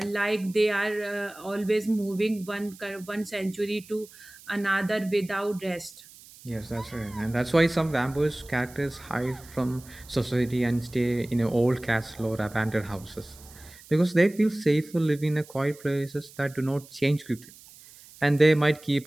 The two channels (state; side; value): noise; right; hiss, 21 dB below the sound